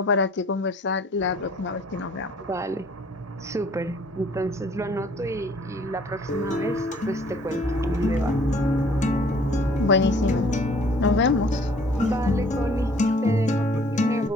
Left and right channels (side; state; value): both; normal; correlation 0.56